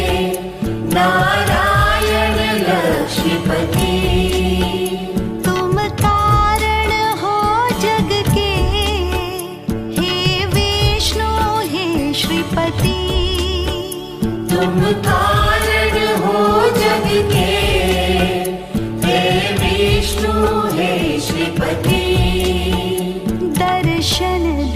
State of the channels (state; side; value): identical; both; correlation 1.00